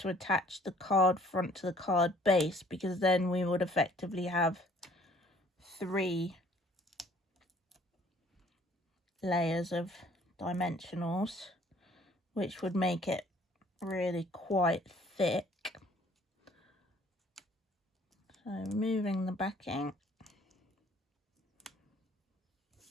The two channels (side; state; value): both; normal; correlation 0.57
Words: attach the card front to the card base, because then we would effectively have 3 layers of dimensionals, which would make it really quite thick. So removing the backing.